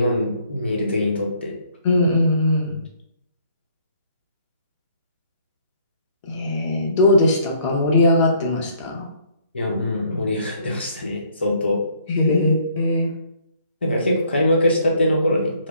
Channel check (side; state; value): both; inverted; correlation -0.63